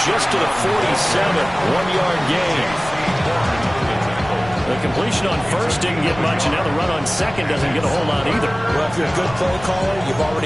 just to the 47, 1-yard gain. The completion on 1st didn't get much, and now the run on 2nd doesn't get a whole lot either. Well, if you're a good play caller, you've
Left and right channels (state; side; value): noise; left; rumble, 16 dB below the sound